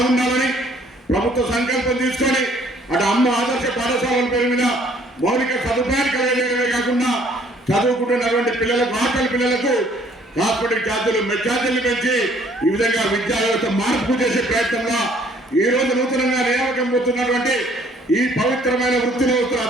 ప్రభుత్వ సంకల్పం తీసుకొని అటు అమ్మ ఆదర్శ పాఠశాలల పేరు మీద మౌలిక సదుపాయాలు కలిగేయడమే కాకుండా చదువుకుంటున్నటువంటి పిల్లలకు ఆకలి పిల్లలకు హాస్పిటల్ ఛార్జీలు మెచ్ఛార్జీలు పెంచి ఈ విధంగా విద్యా వ్యవస్థ మార్పు చేసే ప్రయత్నంలో ఈ రోజు నూతనంగా నియామకం పొందుతున్నటువంటి ఈ పవిత్రమైన వృత్తిలో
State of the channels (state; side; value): normal; both; correlation 0.60